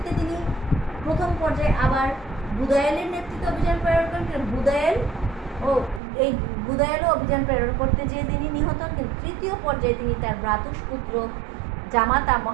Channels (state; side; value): drops out; left; at 6.0 s